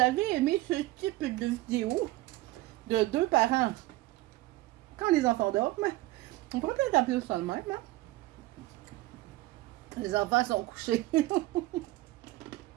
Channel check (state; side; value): quieter; left; 18.3 dB